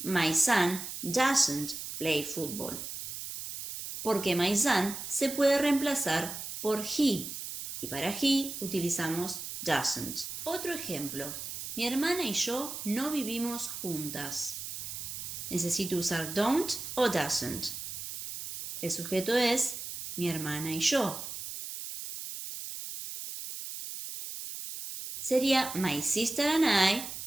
son doesn't play football. Porque my son se puede reemplazar por he y para he utilizamos doesn't. Otro ejemplo. Mi hermana y yo no vivimos juntas. Necesito usar don't o doesn't. El sujeto es mi hermana y yo. Sería my sister and I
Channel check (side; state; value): right; noise; hiss, 8 dB below the sound